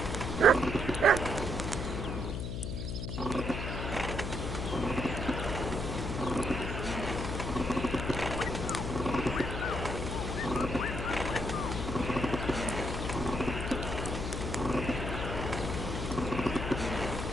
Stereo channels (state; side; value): noise; left; hum, 3 dB below the sound